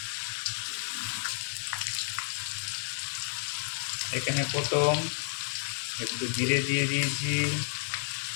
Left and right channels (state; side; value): silent; right; digital silence